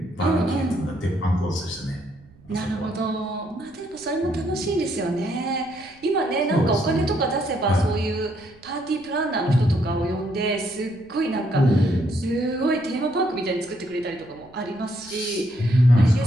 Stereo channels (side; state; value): right; noise; rumble, 27 dB below the sound